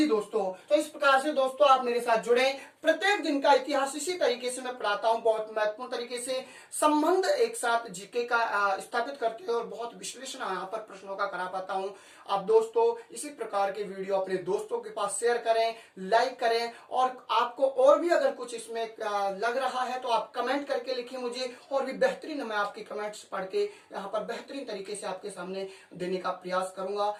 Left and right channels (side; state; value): both; identical; correlation 1.00